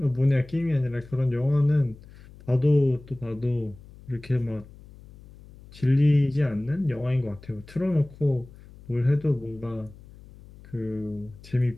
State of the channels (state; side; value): noise; left; hum, 21 dB below the sound